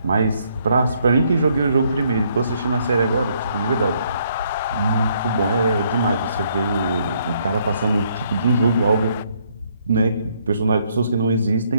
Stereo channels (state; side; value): inverted; both; correlation -0.70